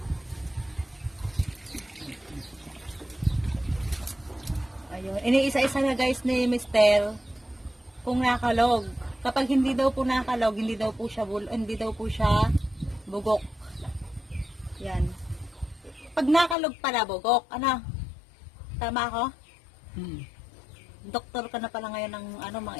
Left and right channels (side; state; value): right; drops out; at 16.6 s